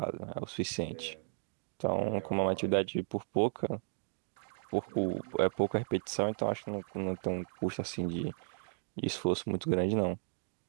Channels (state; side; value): silent; left; digital silence